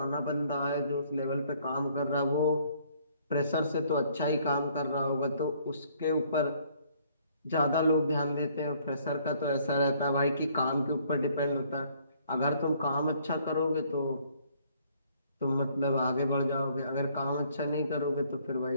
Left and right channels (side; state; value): both; inverted; correlation -0.63